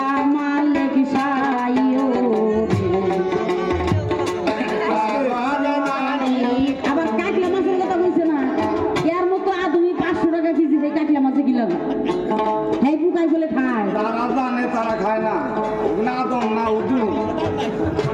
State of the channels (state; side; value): identical; both; correlation 1.00